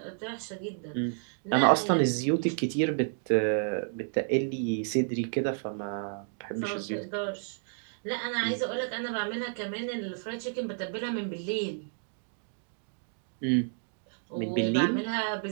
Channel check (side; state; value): left; silent; digital silence